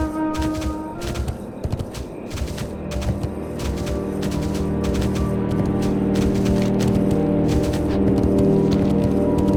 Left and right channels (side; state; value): both; identical; correlation 1.00